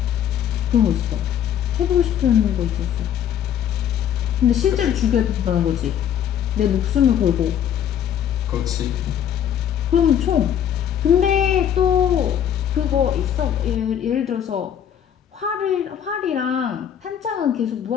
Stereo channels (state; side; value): quieter; right; 9.5 dB